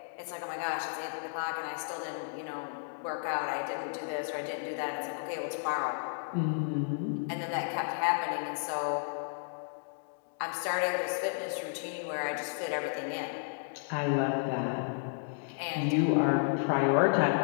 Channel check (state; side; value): silent; right; digital silence